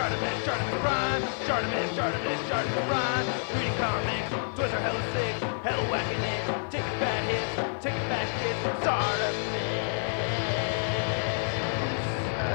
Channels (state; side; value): silent; right; 59 dB below the other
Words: Shartimus Prime, Shartimus Prime. Reading comics, toys are hella sick, hella whacking it. Taking bad hits, taking bad shits. Shartimus,